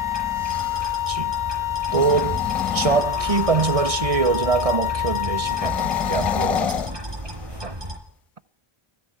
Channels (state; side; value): late; left; 1.6 ms